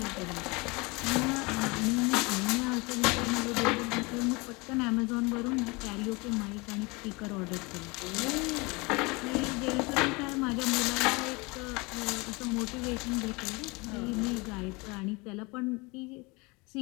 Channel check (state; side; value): quieter; right; 26.5 dB